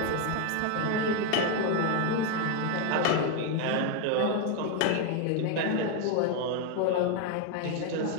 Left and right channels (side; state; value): both; different; correlation 0.01